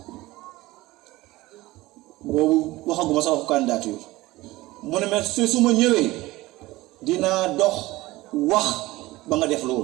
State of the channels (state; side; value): quieter; left; 18.9 dB